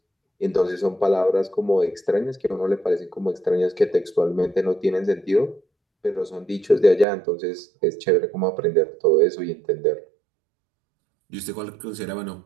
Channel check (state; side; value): drops out; left; at 7.1 s